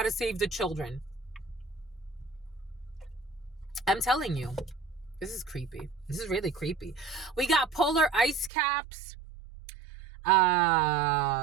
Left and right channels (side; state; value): left; drops out; at 8.5 s